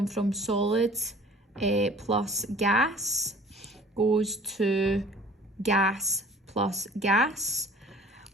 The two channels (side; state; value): both; normal; correlation 0.49